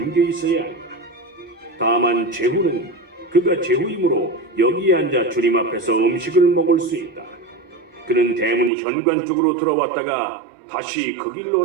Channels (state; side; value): drops out; left; at 8.7 s